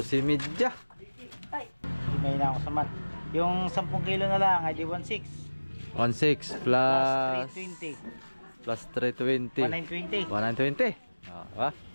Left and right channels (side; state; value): both; inverted; correlation -1.00